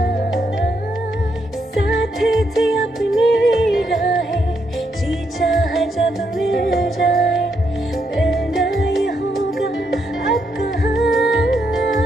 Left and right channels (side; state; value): both; normal; correlation 0.78